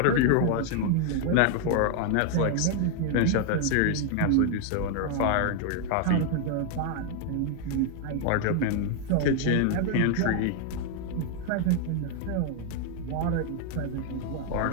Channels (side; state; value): both; different; correlation 0.00